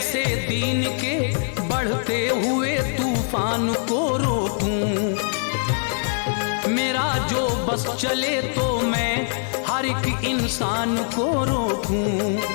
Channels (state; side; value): silent; right; digital silence